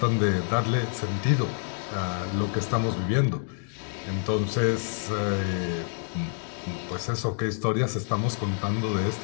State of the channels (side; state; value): right; silent; 56 dB below the other